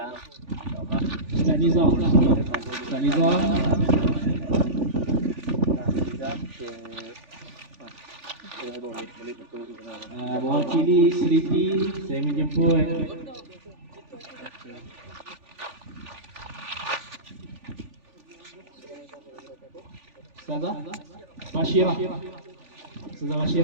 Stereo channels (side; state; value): left; late; 3.4 ms